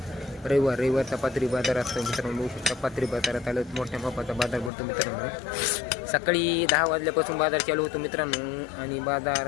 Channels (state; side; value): drops out; right; at 4.7 s